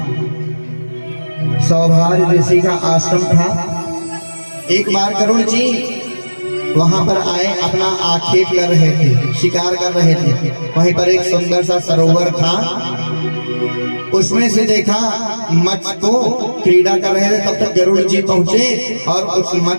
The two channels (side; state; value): both; inverted; correlation -1.00